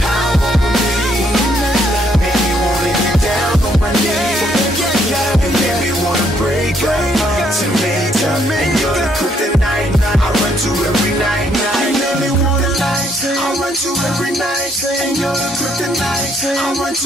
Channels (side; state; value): both; normal; correlation 0.70